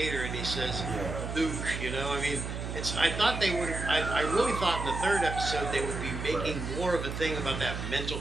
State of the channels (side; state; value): right; noise; hum, 5 dB below the sound